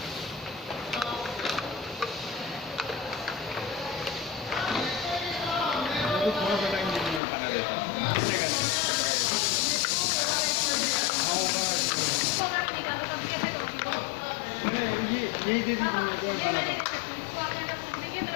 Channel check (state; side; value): drops out; right; at 7.2 s